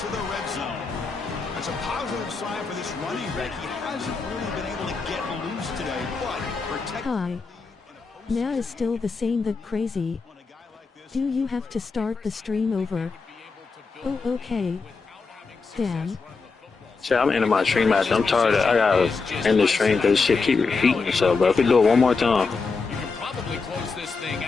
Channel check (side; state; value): right; quieter; 4.5 dB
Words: the red zone. That's a positive sign for this running back. He hasn't really been able to get loose today, but protect. Hi. Now is still the same that crazy. Do you have to start the stream over? Oh, okay. Damn. Shit, I'm ending my stream after. I'm tired of I gotta end the stream because shit keep repeating itself, bro. If we do it one more time. You can probably close this thing